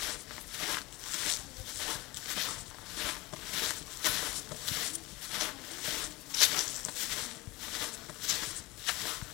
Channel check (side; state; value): right; quieter; 22.5 dB